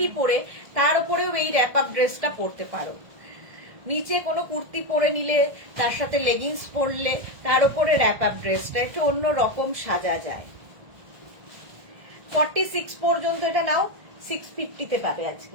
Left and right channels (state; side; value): late; left; 1.5 ms